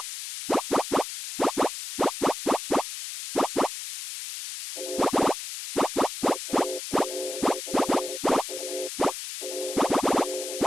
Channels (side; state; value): left; noise; hiss, 7 dB below the sound